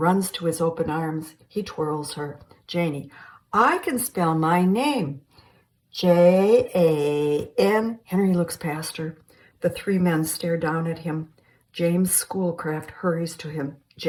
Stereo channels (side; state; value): both; identical; correlation 1.00